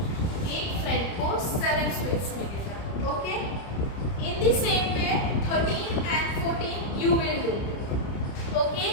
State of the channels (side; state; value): right; late; 30 ms